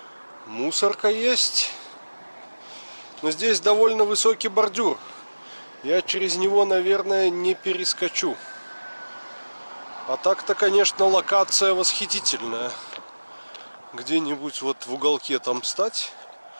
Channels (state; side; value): inverted; both; correlation -1.00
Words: Мусорка есть. Но здесь довольно высокий бордюр. Я через него, наверное, не перескочу. А так-то, конечно, локация восхитительная. Где-нибудь вот в уголке там встать,